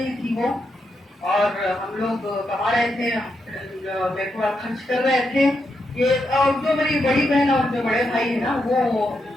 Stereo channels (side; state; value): both; normal; correlation 0.83